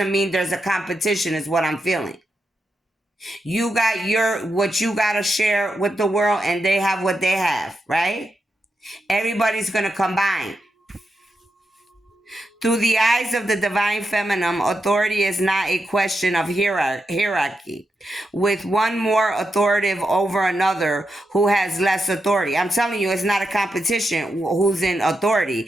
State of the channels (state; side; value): normal; both; correlation 0.86